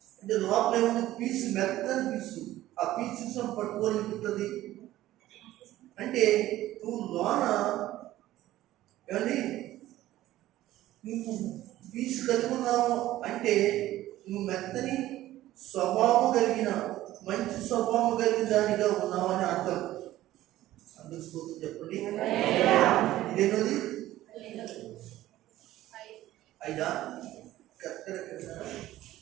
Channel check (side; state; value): left; quieter; 14.9 dB